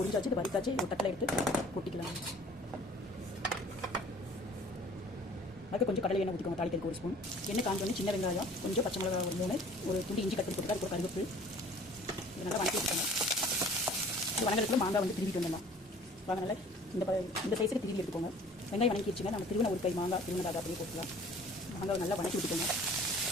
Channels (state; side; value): normal; both; correlation 0.50